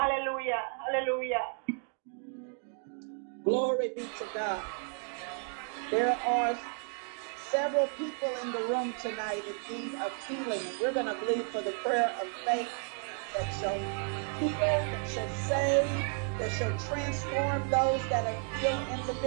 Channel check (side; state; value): left; quieter; 39.6 dB